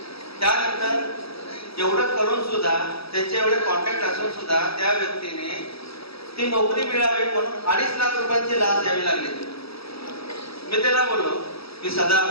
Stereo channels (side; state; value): right; late; 0.77 ms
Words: त्यानंतर एवढं करून सुद्धा, त्यांचे एवढे कॉन्टॅक्ट असून सुद्धा त्या व्यक्तीने ती नोकरी मिळावी म्हणून 2.5 लाख रुपयांची लाच द्यावी लागली. मी त्याला बोललो की